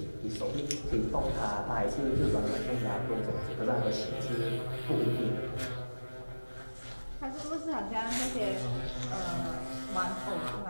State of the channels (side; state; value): both; inverted; correlation -1.00